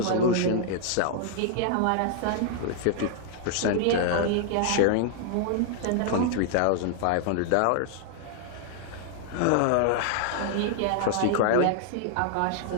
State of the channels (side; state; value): both; different; correlation -0.01